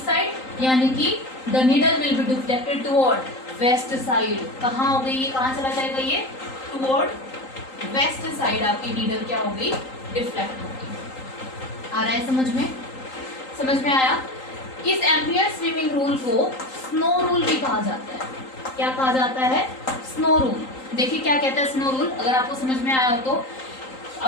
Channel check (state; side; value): late; right; 3.8 ms